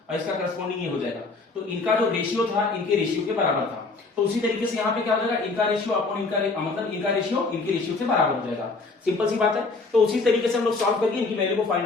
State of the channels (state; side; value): quieter; right; 3.8 dB